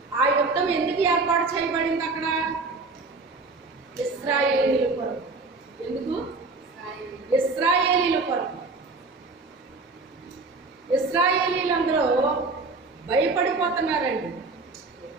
ఆ యుద్ధం ఎందుకు ఏర్పాటు చేయబడింది అక్కడ? ఇశ్రాయేలీయుల కొరకు. ఎందుకు? ఇశ్రాయేలీయుల కొరకు. ఇశ్రాయేలీయులందరూ భయపడిపోతున్నారండి.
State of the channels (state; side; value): quieter; left; 3.8 dB